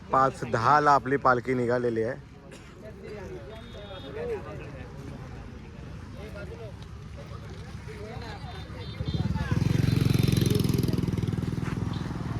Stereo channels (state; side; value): identical; both; correlation 1.00